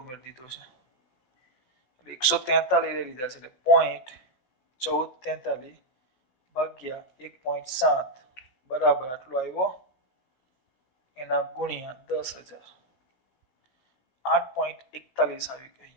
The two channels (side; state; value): right; late; 16 ms